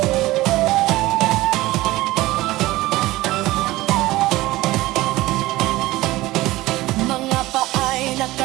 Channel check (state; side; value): quieter; left; 18.2 dB